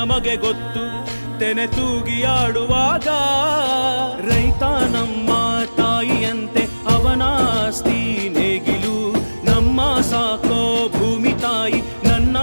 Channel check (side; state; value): both; inverted; correlation -1.00